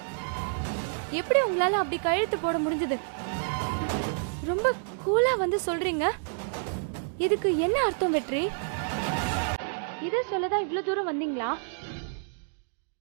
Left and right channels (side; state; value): left; silent; digital silence